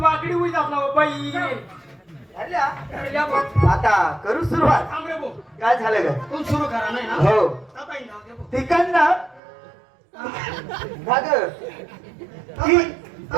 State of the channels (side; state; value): left; drops out; at 9.4 s